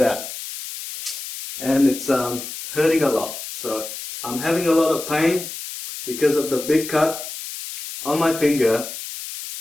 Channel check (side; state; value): left; noise; hiss, 9 dB below the sound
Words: and it's hurting a lot. So I'm having a lot of pain because of the big cut on my finger.